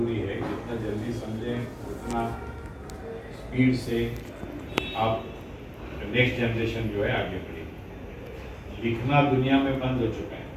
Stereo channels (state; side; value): identical; both; correlation 1.00